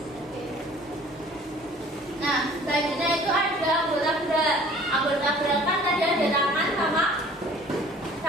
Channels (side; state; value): both; normal; correlation 0.51